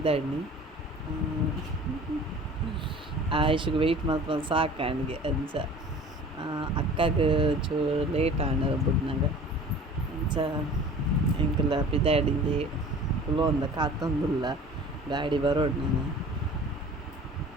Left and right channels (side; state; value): both; normal; correlation 0.44